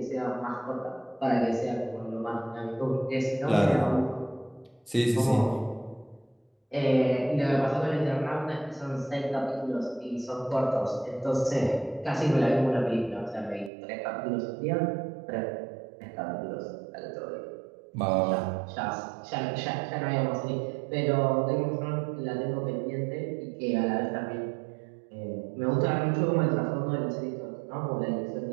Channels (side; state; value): left; drops out; at 13.7 s